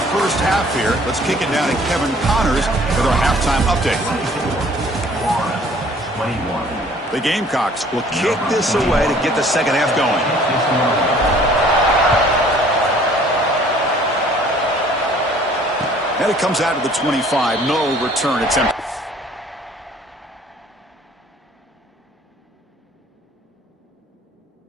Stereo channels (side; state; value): both; normal; correlation 0.55